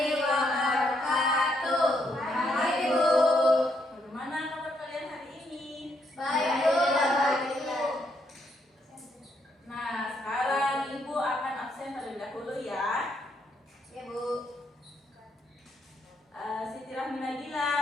wabarakatuh. Baik, Bu. Bagaimana kabar kalian hari ini? Baik, Bu. Nah, sekarang Ibu akan absen terlebih dahulu ya. Ya, Bu. Siti Rahmi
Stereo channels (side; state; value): both; normal; correlation 0.75